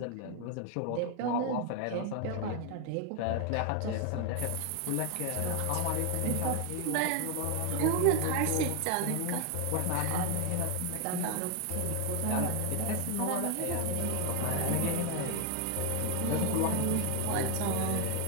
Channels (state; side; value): different; both; correlation 0.01